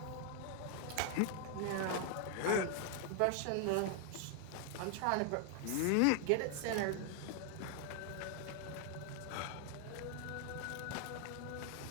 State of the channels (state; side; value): different; both; correlation 0.00